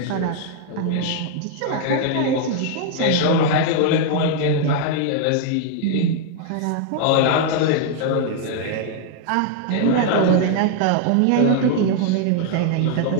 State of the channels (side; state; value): both; different; correlation 0.00